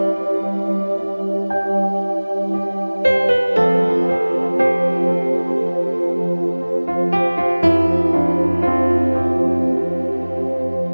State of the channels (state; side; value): inverted; both; correlation -1.00